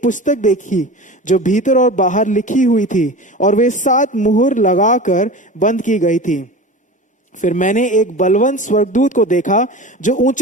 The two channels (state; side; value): normal; both; correlation 0.33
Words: पुस्तक देखी जो भीतर और बाहर लिखी हुई थी, और वे 7 मुहर लगाकर बंद की गई थी। फिर मैंने एक बलवंत स्वर्गदूत को देखा जो